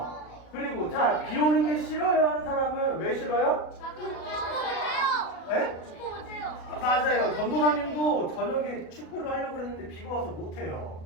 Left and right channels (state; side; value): late; right; 37 ms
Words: 그리고 자, 비 오는 게 싫어요 하는 사람은 왜 싫어요? 축구 못해요. 에? 축구 못해요. 맞아요. 전도사님도 저녁에 축구를 하려고 그랬는데 비가 와서 못해요.